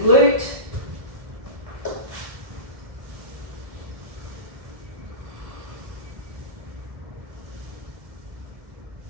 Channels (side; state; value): left; late; 1.7 ms